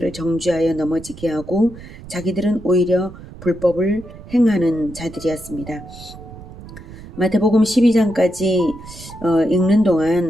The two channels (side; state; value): right; noise; rumble, 16 dB below the sound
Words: 정죄하여 넘어지게 하고 자기들은 오히려 불법을 행하는 자들이었습니다. 마태복음 12장까지 읽는